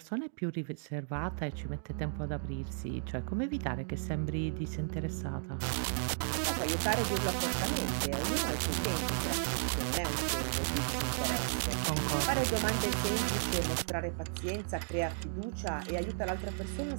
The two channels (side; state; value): left; silent; digital silence